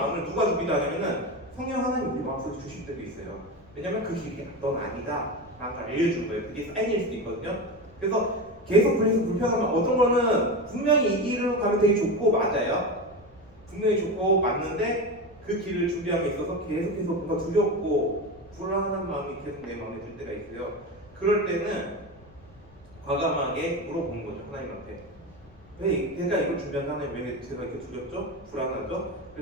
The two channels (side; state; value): left; noise; rumble, 25 dB below the sound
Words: 누가 주기도 하냐면은 성령 하나님 우리 마음속에 주실 때도 있어요. 왜냐면 그 길이 넌 아니다 라고 알려준 거예요. 그게 사인일 수도 있거든요. 그래서 계속 불편하면 어떤 거는 분명히 이 길로 가면 되게 좋고 맞아요. 분명히 좋고 맞는데 그 길을 준비함에 있어서 계속해서 뭔가 두렵고 불안한 마음이 계속 내 마음에 들 때가 있어요. 그럴 때는 과감하게 물어보는 거죠. 하나님한테. 왜 내가 이걸 준비한 하나님 왜 제가 이렇게 두렵죠? 불안하죠?